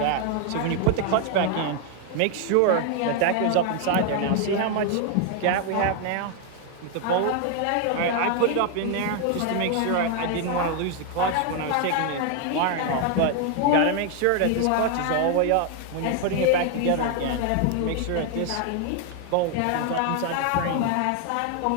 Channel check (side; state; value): both; different; correlation 0.00